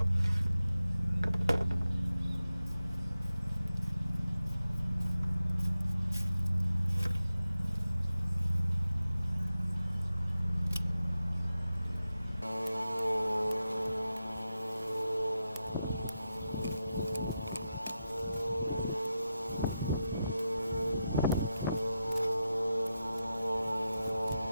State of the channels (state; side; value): inverted; both; correlation -0.90